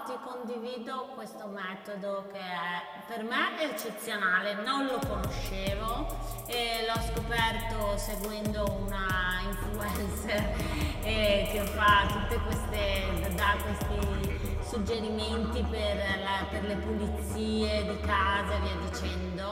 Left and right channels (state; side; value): identical; both; correlation 1.00